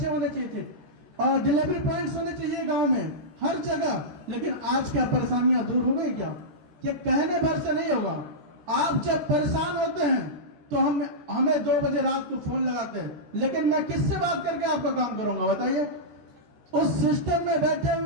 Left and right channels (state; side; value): late; left; 14 ms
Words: होने चाहिए थे, और डिलीवरी पॉइंट्स होने चाहिए गांव में, हर जगह। लेकिन आज क्या परेशानियां दूर हो गई क्या? ये कहने भर से नहीं होगा। आप जब परेशान होते हैं तो हमें 2 बजे रात को फोन लगाते हैं, लेकिन मैं किससे बात करके आपका काम करूंगा? बताइए। उस सिस्टम में बैठे